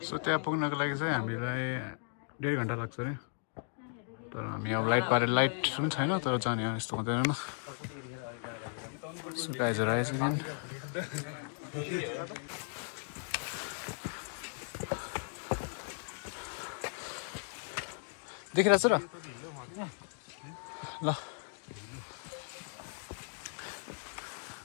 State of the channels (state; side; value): silent; right; 54 dB below the other